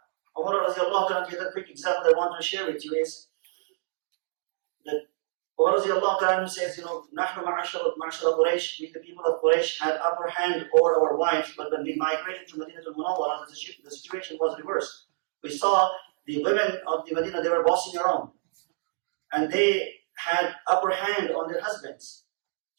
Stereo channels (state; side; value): silent; left; digital silence